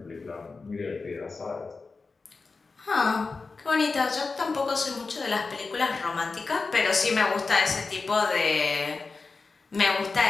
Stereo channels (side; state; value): right; quieter; 4.2 dB